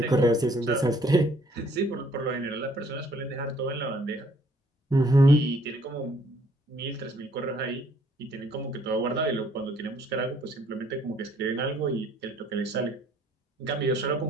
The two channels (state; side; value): normal; both; correlation 0.63